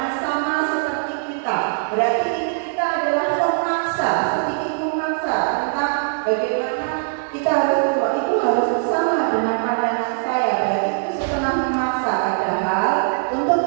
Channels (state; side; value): silent; left; 61 dB below the other